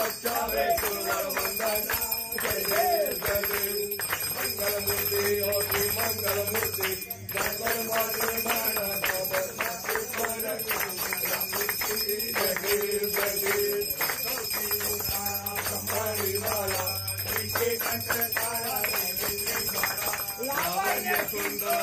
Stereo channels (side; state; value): both; identical; correlation 1.00